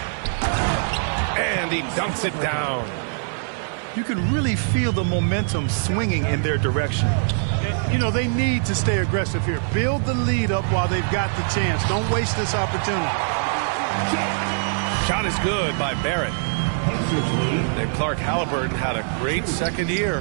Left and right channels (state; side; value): silent; left; 55 dB below the other